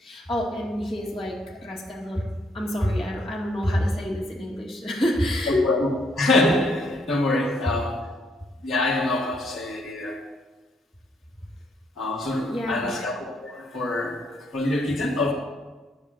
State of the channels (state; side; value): normal; both; correlation 0.72